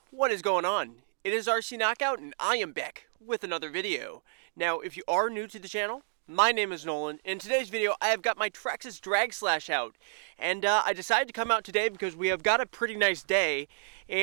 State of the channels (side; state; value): left; silent; digital silence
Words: what is going on? It is RC Knockout and I am back with another video. Now, if you are new to the channel, my name is Nolan. In today's video, I have got my Traxxas Slash out. And I decided to come out today because we have got a pretty nice day.